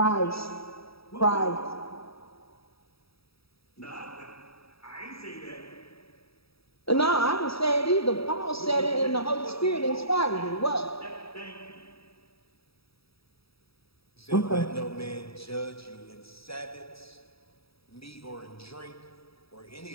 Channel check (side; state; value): right; late; 0.77 ms